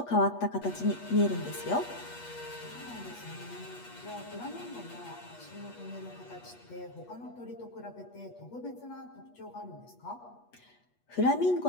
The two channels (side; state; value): right; late; 8.3 ms